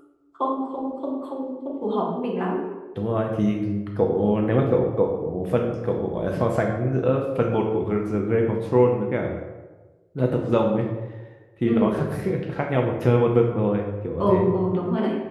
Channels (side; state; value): both; identical; correlation 1.00